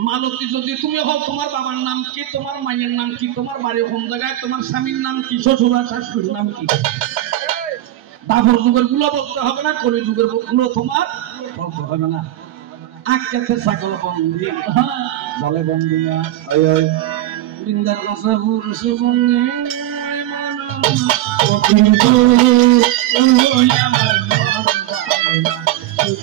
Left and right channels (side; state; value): left; quieter; 14.2 dB